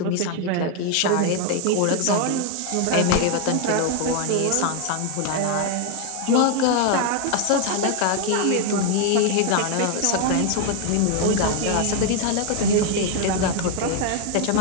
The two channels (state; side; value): different; both; correlation 0.01